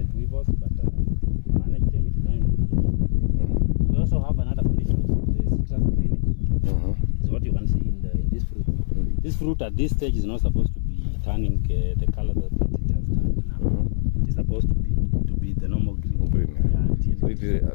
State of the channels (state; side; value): silent; right; 63 dB below the other